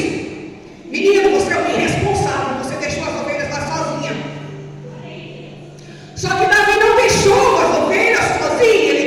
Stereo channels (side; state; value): both; identical; correlation 1.00